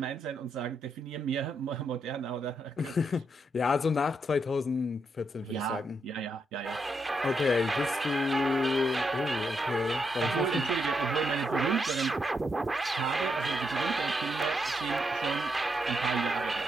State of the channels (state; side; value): normal; both; correlation 0.80